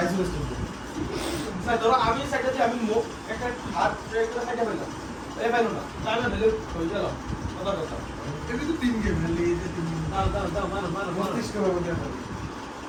স্টেজে স্যার ধরো আমি সাইডটা যে আমি মুখ একটা হাত ট্রেক করে সাইডটা পেলাম এই পাইলো না তাই না ভেলে হয়ে গেল কথা কথা এটা তো তিন গেম হলে এই যে তিন দাও দাও দাও মারো মারো মারো মস্তিষ্ক ভাবে দেখো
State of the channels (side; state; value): both; identical; correlation 1.00